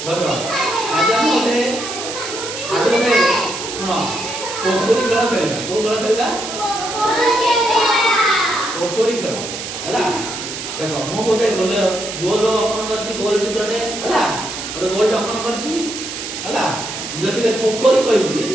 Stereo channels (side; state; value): right; noise; hiss, 7 dB below the sound